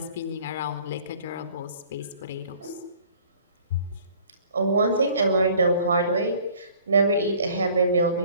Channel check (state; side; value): inverted; both; correlation -0.53